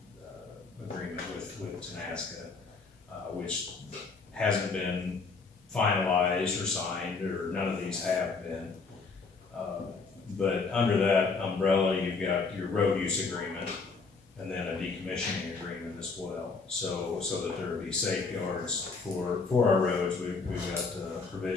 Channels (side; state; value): right; quieter; 4.4 dB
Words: agreement with Tenasca, which hasn't been finalized or signed, or none of these have been. But under that umbrella, you've got your road use agreement and then a decommissioning agreement as well. So that there will be safeguards for our roads. We've got